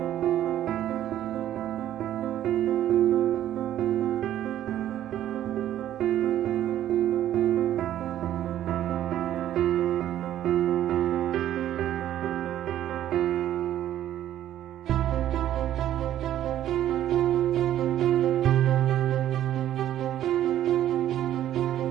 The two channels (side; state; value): left; quieter; 12.0 dB